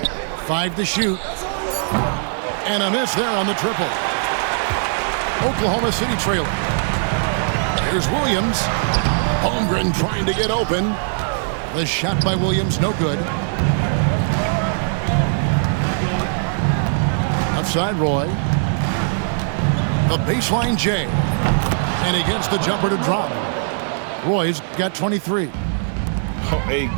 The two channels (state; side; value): silent; left; digital silence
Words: 5 to shoot. And a miss there on the triple. Oklahoma City trailing. Here's Williams. Holmgren trying to get open. The shot by Williams, no good. Outside Roy. The baseline Jay. And he gets the jumper to drop. Roy's got 23. A